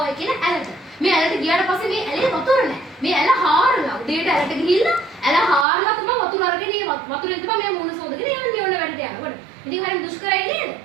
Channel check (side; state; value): left; drops out; at 5.7 s